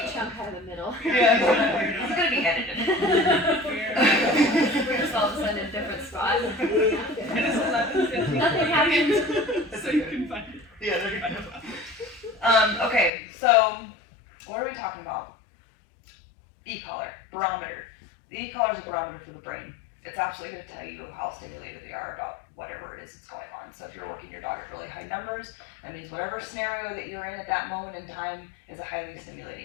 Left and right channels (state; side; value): drops out; right; at 13.1 s